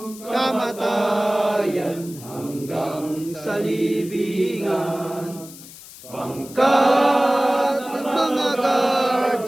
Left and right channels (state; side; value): noise; left; hiss, 17 dB below the sound